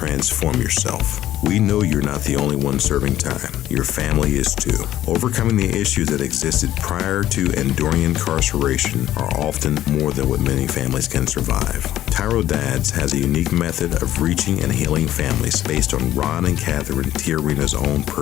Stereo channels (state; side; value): quieter; right; 13.2 dB